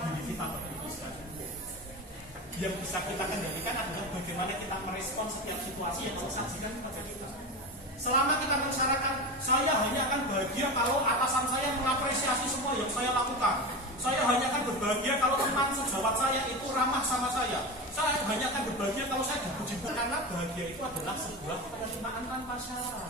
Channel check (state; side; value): normal; both; correlation 0.24